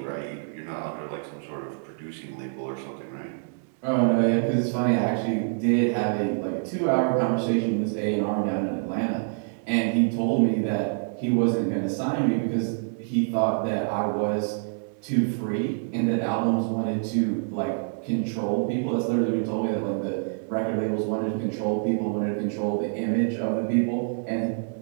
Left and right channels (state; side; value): silent; left; digital silence